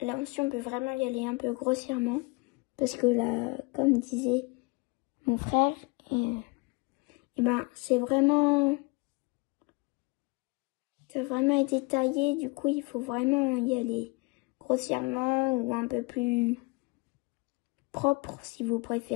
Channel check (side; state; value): right; quieter; 27.1 dB